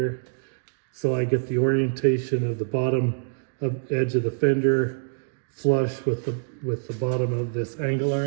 so I get the orientation of the bottom edge of the fender flush with the bottom of this angle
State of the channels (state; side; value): silent; left; digital silence